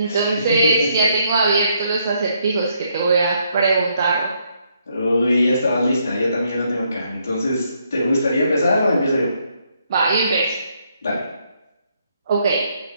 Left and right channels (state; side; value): inverted; both; correlation -0.73